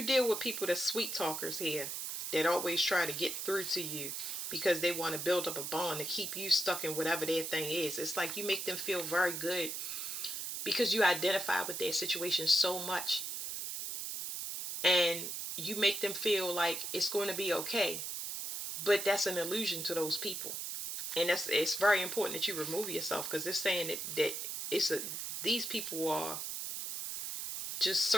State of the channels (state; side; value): noise; right; hiss, 4 dB below the sound